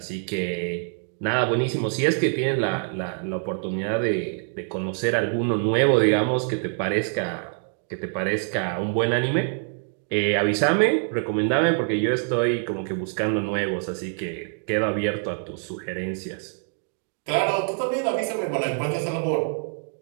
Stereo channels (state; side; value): silent; left; 57 dB below the other